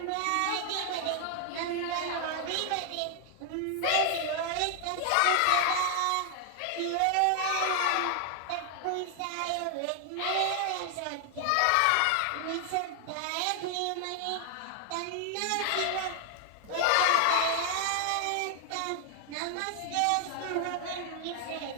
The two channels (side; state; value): both; different; correlation 0.00